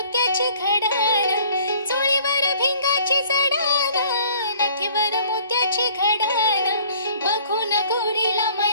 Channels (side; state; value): both; inverted; correlation -0.54